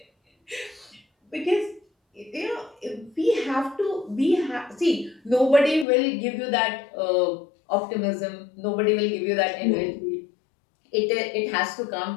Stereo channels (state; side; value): drops out; right; at 5.9 s